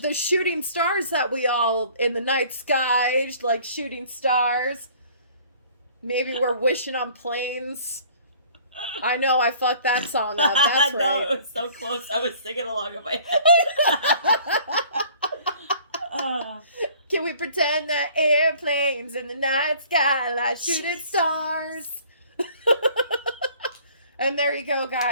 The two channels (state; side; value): inverted; both; correlation -0.53